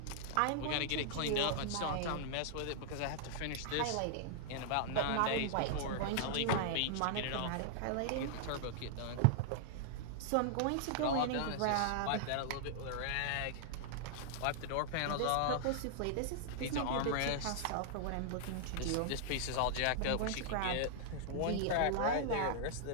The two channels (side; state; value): both; different; correlation -0.01